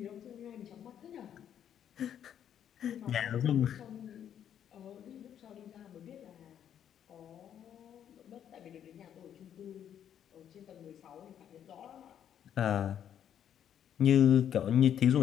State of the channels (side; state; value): right; quieter; 9.6 dB